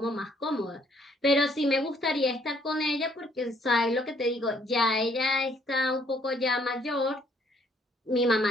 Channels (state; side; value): normal; both; correlation 0.66